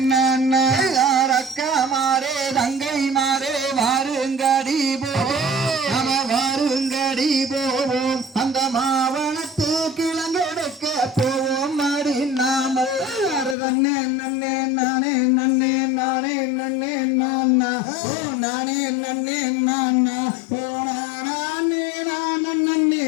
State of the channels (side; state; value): right; drops out; at 13.6 s